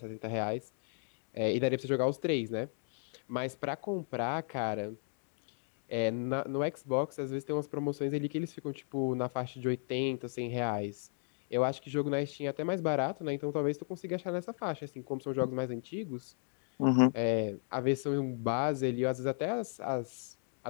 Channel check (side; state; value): right; silent; 54 dB below the other